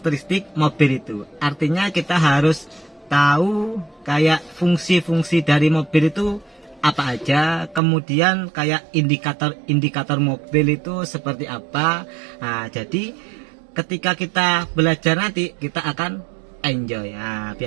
mobil itu. Artinya kita harus tahu kayak fungsi-fungsi dari mobil itu apa aja, kemudian kayak indikator mobil itu seperti apa. Nah, jadi ketika kita belajar nanti kita akan enjoy. Nah,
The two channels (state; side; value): drops out; left; at 7.8 s